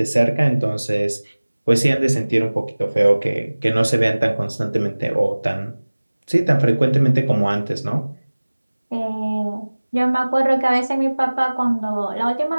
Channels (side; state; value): both; inverted; correlation -1.00